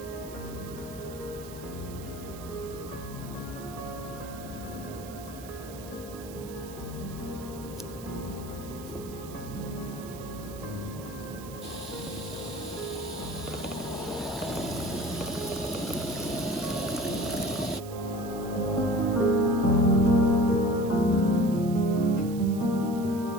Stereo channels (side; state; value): right; noise; hiss, 17 dB below the sound